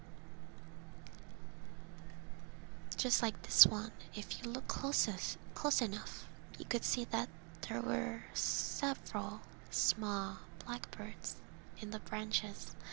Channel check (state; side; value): quieter; left; 35.1 dB